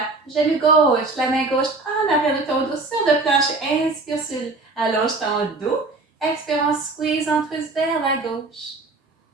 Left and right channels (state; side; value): quieter; left; 3.4 dB